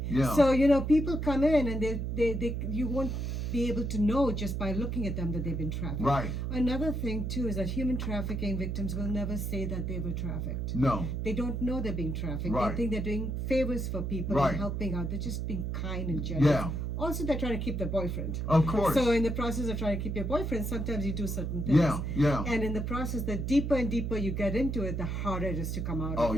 Yeah. So, people come in and they you won't be able to know just by looking at them that they've been trafficked. Right. Another thing too is that human trafficking victims will never say that they were trafficked. No. They don't know they're being trafficked. Right. They think they're doing favors for people and helping out. They're just being kind and generous. Yeah. Also, they're trying to keep their boyfriend. Of course. So in the process of trying to keep your boyfriend, sometimes you do certain things. Yeah. And in the process, the deeper and deeper you get into it, the harder it is to come out of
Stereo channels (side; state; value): right; noise; hum, 2 dB below the sound